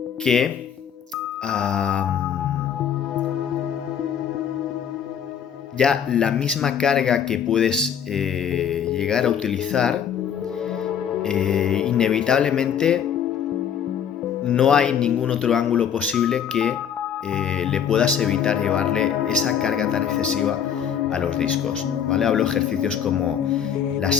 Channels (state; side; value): quieter; right; 8.4 dB